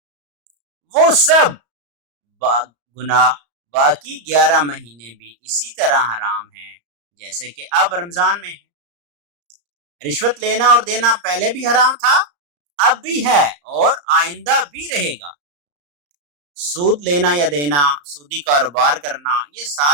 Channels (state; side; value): late; left; 34 ms